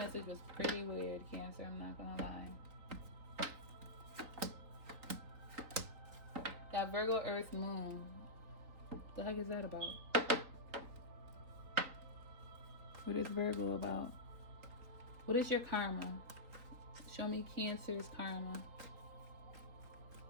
was pretty weird, Cancer, I'm not gonna lie. That Virgo Earth Moon. The heck is that about? What is Virgo about? What is your karma? Show me Cancer's karma.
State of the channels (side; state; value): left; late; 3.9 ms